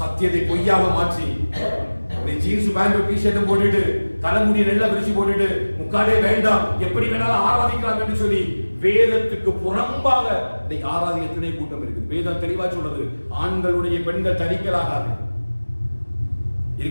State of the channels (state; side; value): inverted; both; correlation -1.00